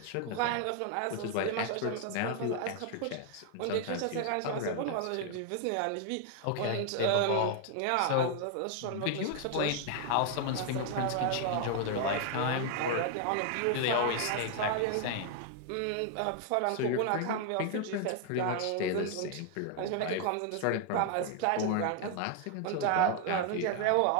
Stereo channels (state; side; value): different; both; correlation 0.00